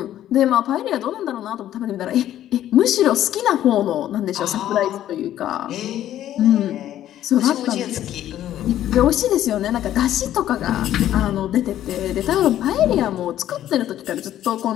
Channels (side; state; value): right; quieter; 12.2 dB